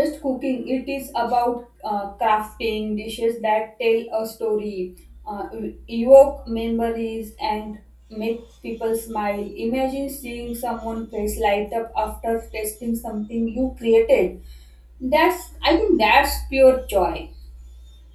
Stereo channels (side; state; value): both; identical; correlation 1.00